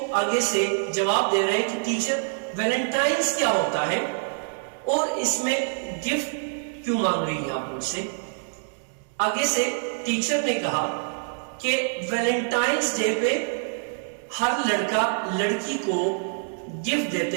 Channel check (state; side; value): silent; left; digital silence